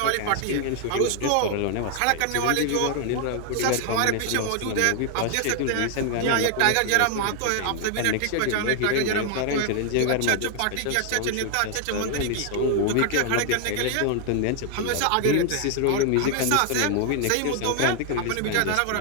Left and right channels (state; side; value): different; both; correlation 0.00